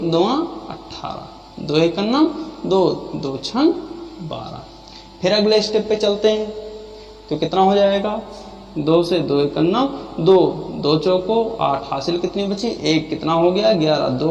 18, 2 एकन्नम 2, 2 छंग 12। फिर अगले स्टेप पे चलते हैं तो कितना हो जाएगा, 2 से 2 एकन्नम 2, 2 चौको 8, हासिल कितनी बची 1, कितना हो गया 11,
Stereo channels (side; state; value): both; identical; correlation 1.00